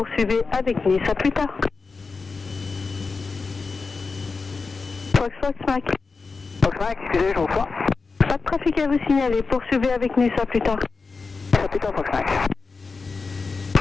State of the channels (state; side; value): quieter; right; 4.4 dB